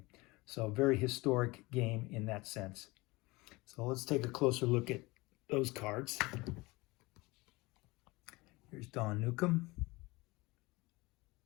So a very historic game in that sense. So let's take a closer look at those cards. Here's Don Newcomb.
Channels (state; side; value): quieter; right; 22.7 dB